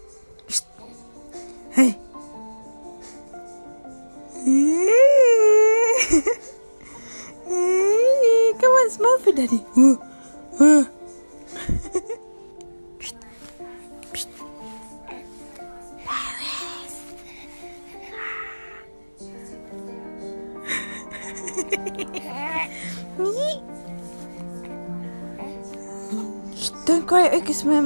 Shh. Hey. Come on, smell for daddy. Shh. Shh. Shh, don't cry because my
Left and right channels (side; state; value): both; inverted; correlation -1.00